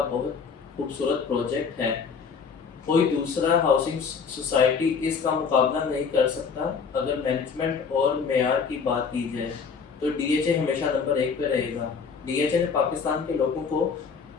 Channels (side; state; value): right; quieter; 5.7 dB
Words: بہت خوبصورت پروجیکٹ ہے, کوئی دوسرا ہاؤسنگ سوسائٹی اس کا مقابلہ نہیں کر سکتا. اگر مینجمنٹ اور معیار کی بات کی جائے تو ڈی ایچ اے ہمیشہ نمبر 1 پہ رہے گا. ڈی ایچ اے نے پاکستان کے لوگوں کو